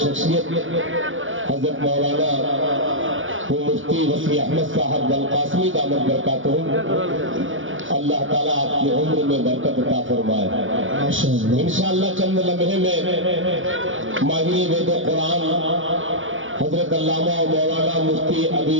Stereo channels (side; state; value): left; late; 0.57 ms